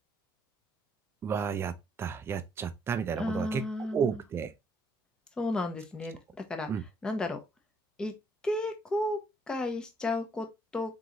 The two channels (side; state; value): both; normal; correlation 0.70